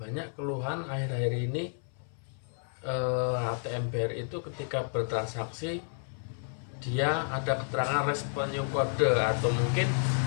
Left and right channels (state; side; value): silent; right; 57 dB below the other